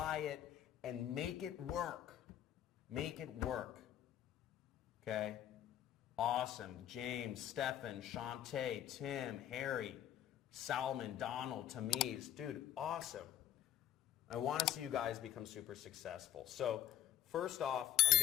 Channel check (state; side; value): quieter; right; 11.6 dB